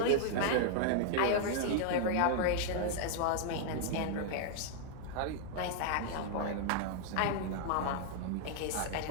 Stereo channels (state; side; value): different; both; correlation 0.00